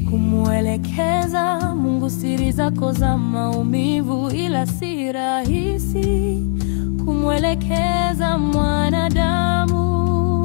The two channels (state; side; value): silent; right; 67 dB below the other